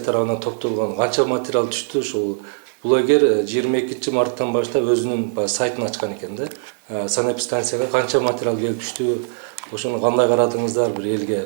тарабынан топтолгон канча материал түштү? Ушул блогер 22 марттан баштап өзүнүн сайтын ачкан экен да. Санэпидстанцияга канча материал келип түштү? Ошону кандай карадыңыздар? Бир элге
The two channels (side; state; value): left; silent; 62 dB below the other